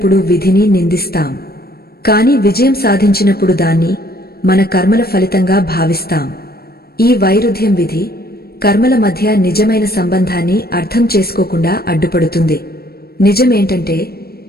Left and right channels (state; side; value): late; right; 0.45 ms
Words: విధిని నిందిస్తాం, కాని విజయం సాధించినప్పుడు దాన్ని మన కర్మల ఫలితంగా భావిస్తాం. ఈ వైరుధ్యం విధి, కర్మల మధ్య నిజమైన సంబంధాన్ని అర్థం చేసుకోకుండా అడ్డుపడుతుంది. నిజమేంటంటే,